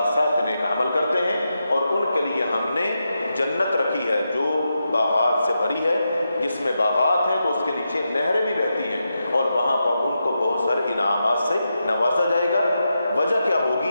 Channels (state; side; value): inverted; both; correlation -0.87